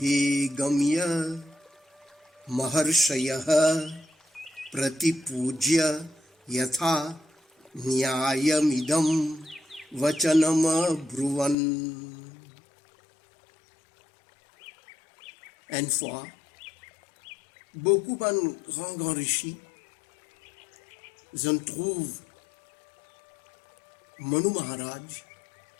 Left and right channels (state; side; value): drops out; right; at 11.6 s